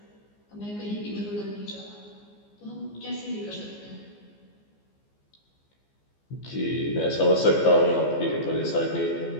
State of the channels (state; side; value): late; right; 14 ms